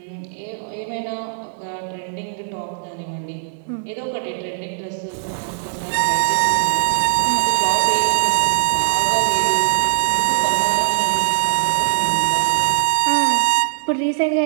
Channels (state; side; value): silent; left; 66 dB below the other